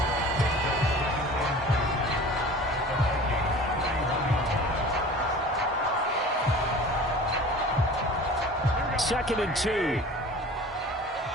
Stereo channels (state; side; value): normal; both; correlation 0.41